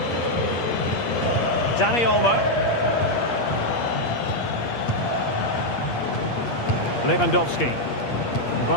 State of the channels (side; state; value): right; late; 8.5 ms